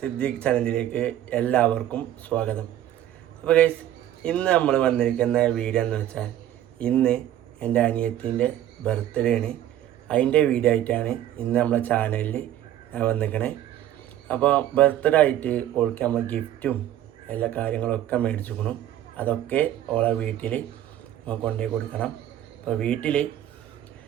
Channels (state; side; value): quieter; left; 12.1 dB